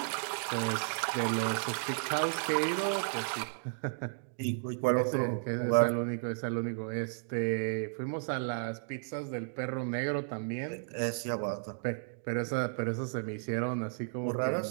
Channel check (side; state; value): left; silent; digital silence